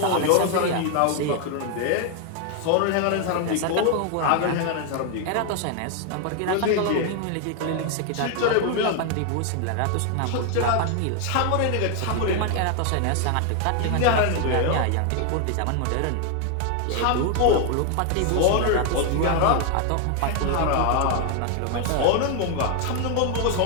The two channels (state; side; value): different; both; correlation 0.00